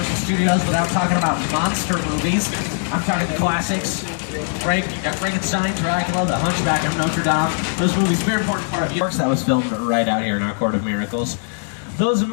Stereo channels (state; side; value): silent; right; 65 dB below the other